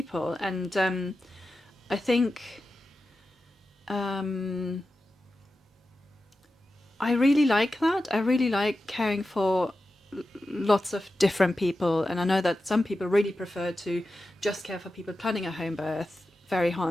And I think... I really like that. I really like caring for lots of different people, and I know that some people really prefer to just care for people planning a home birth, very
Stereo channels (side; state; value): both; normal; correlation 0.92